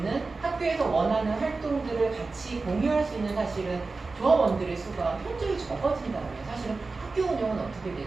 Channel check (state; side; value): quieter; left; 3.8 dB